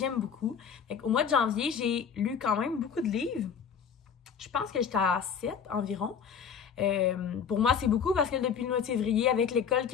beaucoup. Au mois de janvier, j'ai lu quand même beaucoup de livres. Je pense que j'étais à 7 environ. Pour moi, c'est beaucoup parce que depuis le mois de février, avec l'école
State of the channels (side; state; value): right; quieter; 7.0 dB